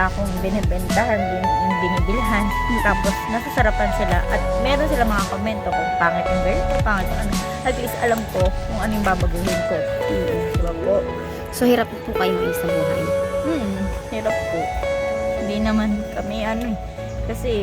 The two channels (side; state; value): both; identical; correlation 1.00